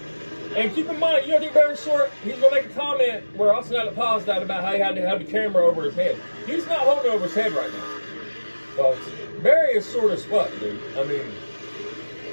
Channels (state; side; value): inverted; both; correlation -1.00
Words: And keep in mind, you know, I think Barry Short, he's going to make a comment where Austin had to pause that about how he had to have the camera over his head. He's not holding it over his head right now. Folks, Barry is short as fuck, dude. I mean,